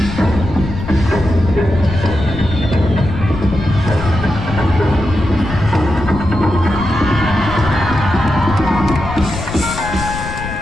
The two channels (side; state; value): left; noise; rumble, 8 dB below the sound